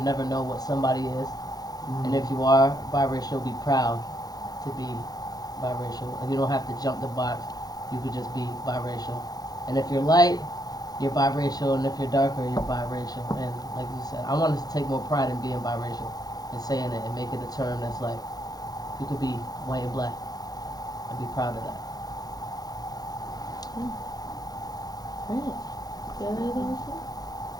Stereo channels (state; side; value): late; right; 0.19 ms